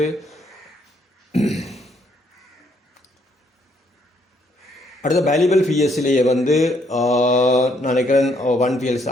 அடுத்த வேல்யூபிள் பிஎஸ்சிலேயே வந்து நினைக்கிறேன் 1 பிஎல்சி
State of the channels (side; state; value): both; normal; correlation 0.70